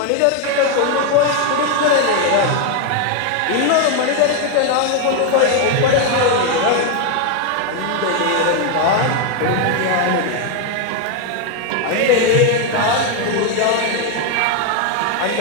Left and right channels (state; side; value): different; both; correlation 0.01